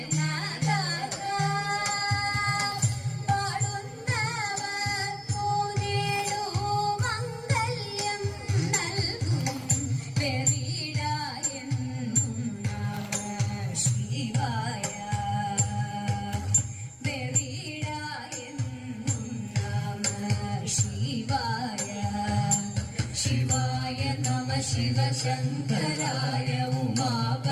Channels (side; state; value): both; identical; correlation 1.00